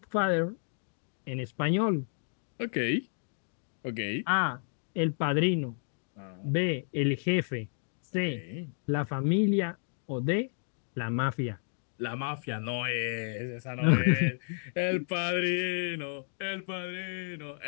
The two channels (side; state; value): right; silent; digital silence